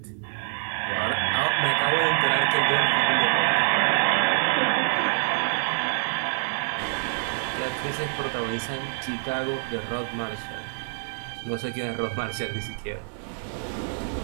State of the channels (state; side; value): silent; left; 61 dB below the other